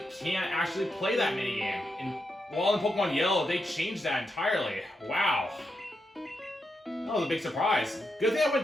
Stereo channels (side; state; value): both; normal; correlation 0.85